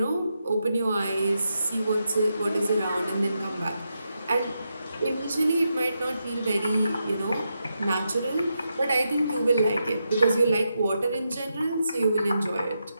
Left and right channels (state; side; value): inverted; both; correlation -0.85